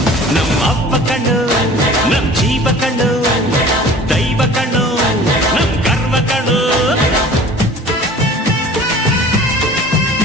ನಮ್ಮ ಅವ್ವ ಕಣ್ಣು, ನಮ್ ಜೀವ ಕಣ್ಣು, ದೈವ ಕಣ್ಣು, ನಮ್ ಗರ್ವ ಕಣ್ಣು.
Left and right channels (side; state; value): both; normal; correlation 0.45